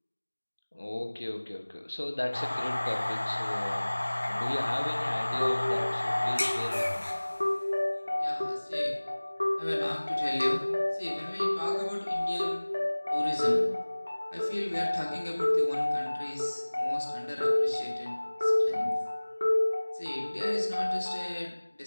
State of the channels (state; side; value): inverted; both; correlation -1.00